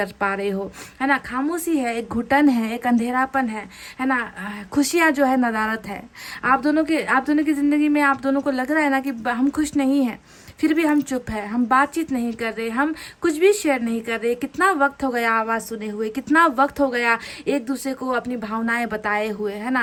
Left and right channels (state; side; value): identical; both; correlation 1.00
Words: पा रहे हो, है ना। खामोशी है, एक घुटन है, एक अंधेरापन है ना। खुशियाँ जो है नदारत है। आप दोनों की ज़िंदगी में आप दोनों को लग रहा है ना कि हम खुश नहीं हैं, फिर भी हम चुप है, हम बातचीत नहीं कर रहे, हम कुछ भी शेयर नहीं कर रहे। कितना वक्त हो गया आवाज़ सुने हुए, कितना वक्त हो गया एक दूसरे को अपनी भावनाएं बताए हुए, है